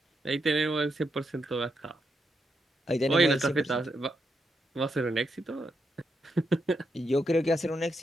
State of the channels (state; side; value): normal; both; correlation 0.82